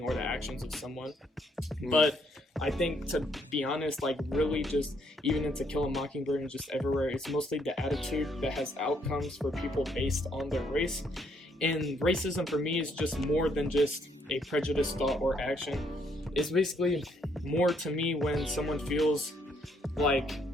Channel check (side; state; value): both; normal; correlation 0.70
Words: or the actions of someone. But I think, to be honest, really just even in To Kill a Mockingbird and just everywhere, it's mostly the attitude that has outcomes for people based on their race. And racism for me is just more than just a prejudiced thought or action. It's basically more to me when someone feels like